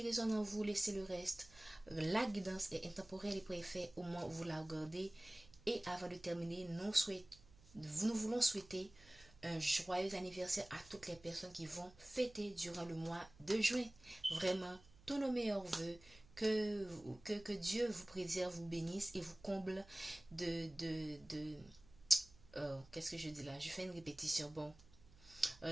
résonne en vous, laissez le reste. La guidance est intemporelle et préfet au moment où vous la regardez. Et avant de terminer, nous voulons souhaiter un joyeux anniversaire à toutes les personnes qui vont fêter durant le mois de juin. Vraiment, tous nos meilleurs voeux. Que Dieu vous préserve, vous bénisse et vous comble qu'est-ce que je dis là? Je fais une répétition. Bon,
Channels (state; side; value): noise; right; hum, 24 dB below the sound